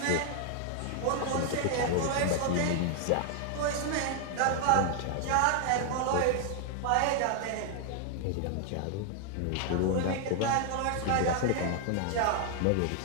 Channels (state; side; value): different; both; correlation 0.00